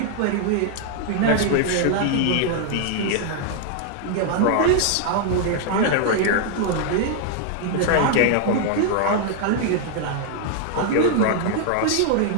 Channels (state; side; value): different; both; correlation 0.00